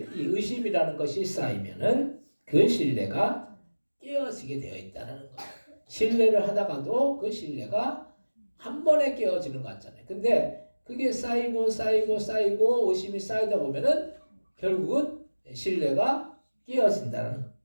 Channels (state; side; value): inverted; both; correlation -1.00